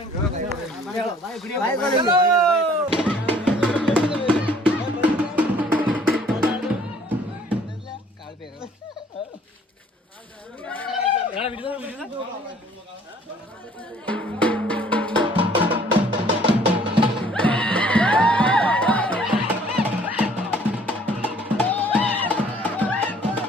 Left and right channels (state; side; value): normal; both; correlation 0.57